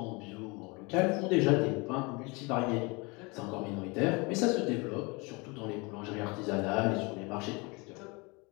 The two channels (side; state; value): right; quieter; 27.7 dB